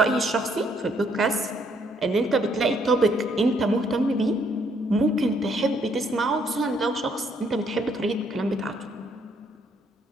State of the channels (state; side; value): normal; both; correlation 0.69